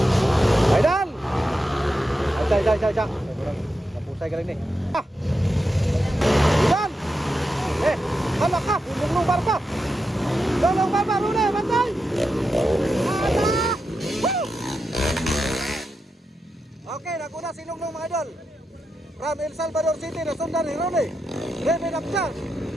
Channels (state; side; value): normal; both; correlation 0.87